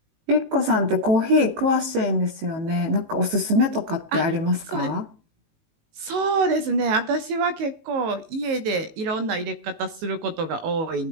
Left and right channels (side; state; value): left; late; 19 ms